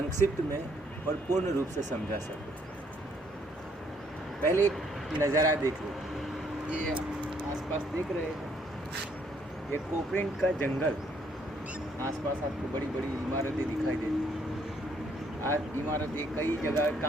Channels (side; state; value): both; normal; correlation 0.68